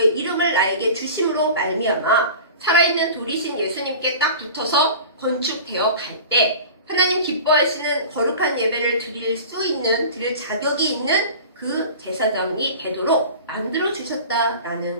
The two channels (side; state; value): both; inverted; correlation -0.37